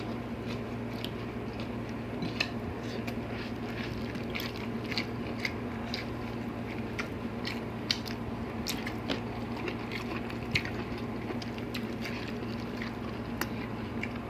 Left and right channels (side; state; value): both; identical; correlation 1.00